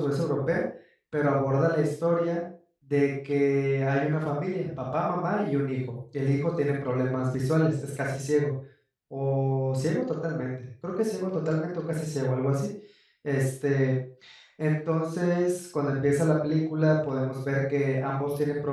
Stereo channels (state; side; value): identical; both; correlation 1.00